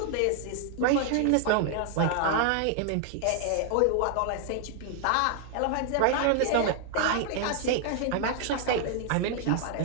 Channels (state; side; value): different; both; correlation 0.00